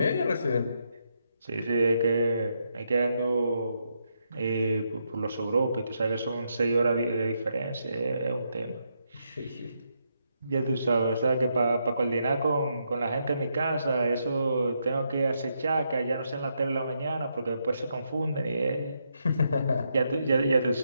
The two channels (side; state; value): both; inverted; correlation -0.80